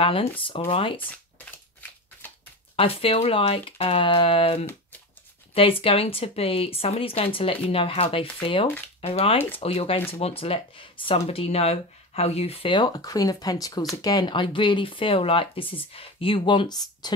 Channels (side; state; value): both; normal; correlation 0.24